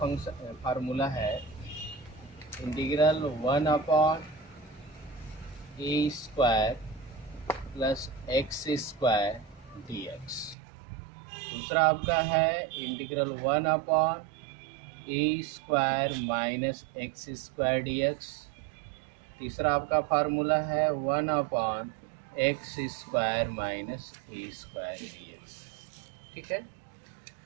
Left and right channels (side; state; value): left; drops out; at 10.6 s